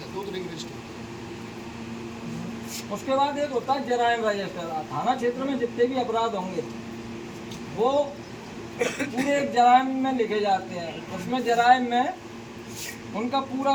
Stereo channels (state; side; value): identical; both; correlation 1.00